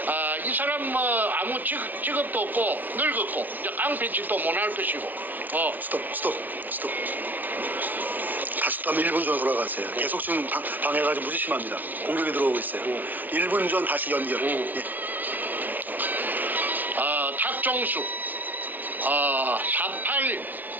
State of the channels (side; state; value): left; late; 0.085 ms